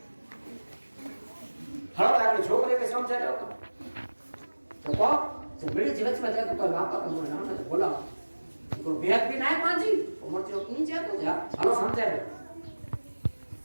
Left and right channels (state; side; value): inverted; both; correlation -1.00